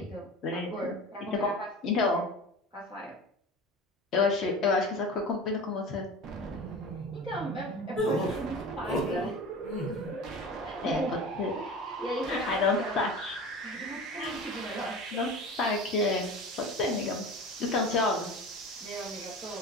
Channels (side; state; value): both; normal; correlation 0.34